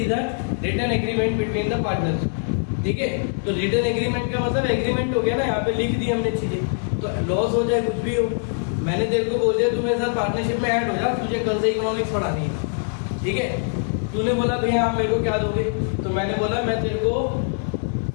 is a written agreement between the partners, ठीक है। तो रिटन एग्रीमेंट का मतलब एग्रीमेंट हो गया ना, यहाँ पे लिख दी हमने चीजें। तो लॉस हो चाहे कुछ भी हो, मैंने तेरे को बोल दिया तू मेरे साथ पार्टनरशिप में ऐड हो जा, तुझे कल से इकोनॉमिक्स पढ़ानी है, ठीक है। तूने बोला भैया आप मेरे को क्या दोगे? तो मैंने बोला मैं तेरे को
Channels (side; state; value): right; silent; digital silence